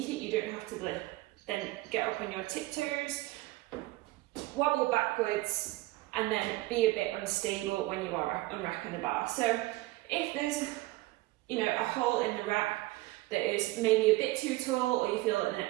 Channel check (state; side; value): quieter; left; 19.4 dB